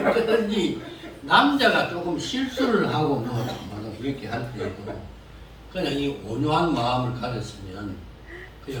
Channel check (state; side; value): identical; both; correlation 1.00